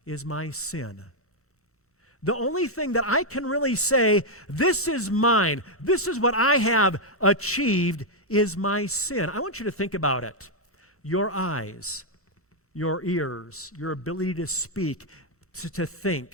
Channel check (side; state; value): both; normal; correlation -0.02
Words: is my sin. The only thing that I can really say, this is mine, this is what I have achieved, is my sin. I want you to think about it. Your eyes, your ears, your ability to speak, to